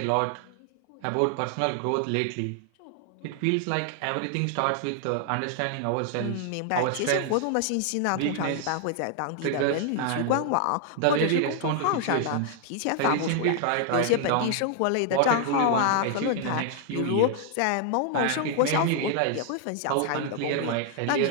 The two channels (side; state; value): both; different; correlation 0.00